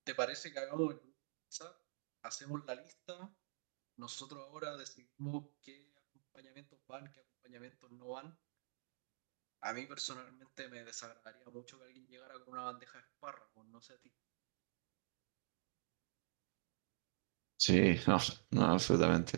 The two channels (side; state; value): left; silent; digital silence